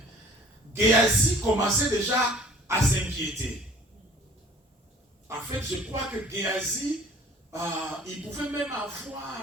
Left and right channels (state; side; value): normal; both; correlation 0.50